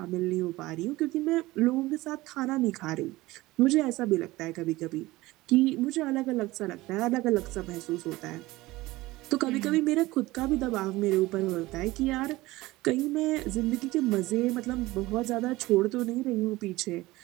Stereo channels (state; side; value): quieter; left; 19.1 dB